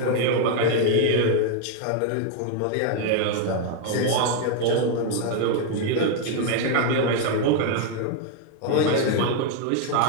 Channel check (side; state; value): both; different; correlation 0.00